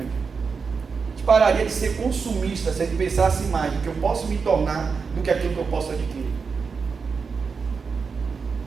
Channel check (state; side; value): quieter; left; 5.3 dB